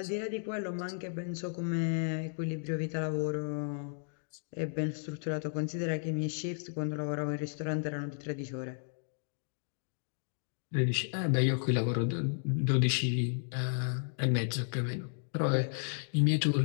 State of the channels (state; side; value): silent; right; digital silence